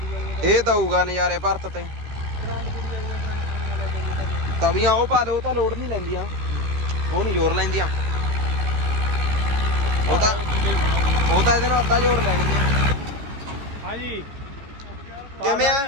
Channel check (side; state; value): left; late; 14 ms